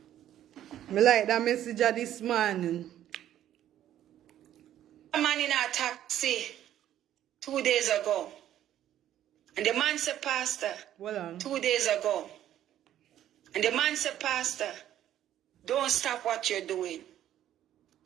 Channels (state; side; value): quieter; left; 11.8 dB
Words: Me like that message of this morning. A man in a taxi 2 days ago. And the man said, Pastor, Well on. 2 days ago. And the man said, Pastor, don't stop what you're doing.